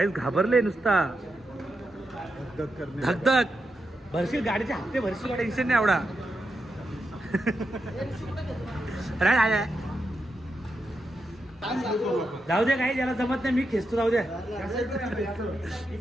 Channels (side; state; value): both; normal; correlation 0.86